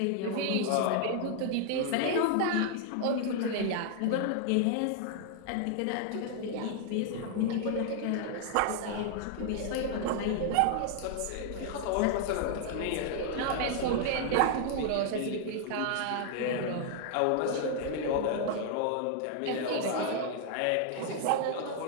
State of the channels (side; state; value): both; different; correlation 0.00